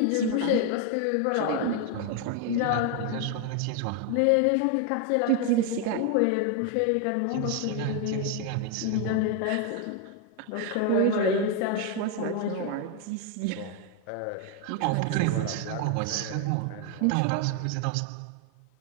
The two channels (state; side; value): different; both; correlation 0.01